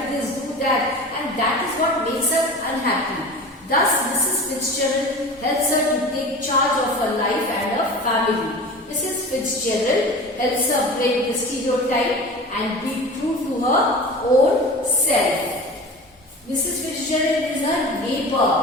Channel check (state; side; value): normal; both; correlation 0.35